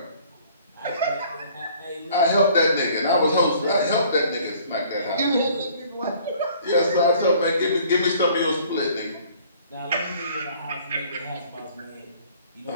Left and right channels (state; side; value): inverted; both; correlation -0.55